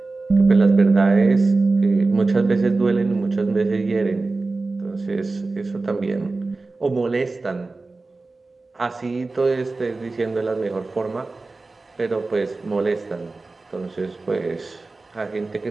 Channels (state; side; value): quieter; left; 3.5 dB